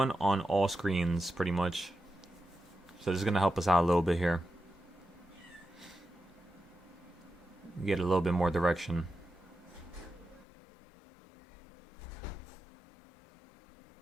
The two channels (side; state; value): right; drops out; at 10.5 s